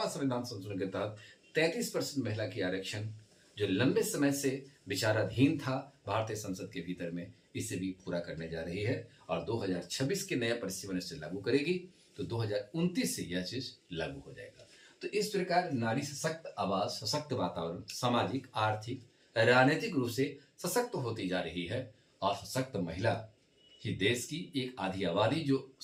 संविधान संशोधन के तहत 33% महिला की आरक्षण जो लंबे समय से विचाराधीन था भारतीय संसद के भीतर में, इसे भी पूरा करने जा रही है और 2026 के नया परिसीमन से लागू करेगी तो 2029 से यह चीज लागू हो जाएगा। तो इस प्रकार नारी सशक्त आवाज, सशक्त वातावरण, सामाजिक, आर्थिक, राजनीतिक रूप से सशक्त होती जा रही है और सशक्त महिला ही देश की एक आधी आबादी जो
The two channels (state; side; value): identical; both; correlation 1.00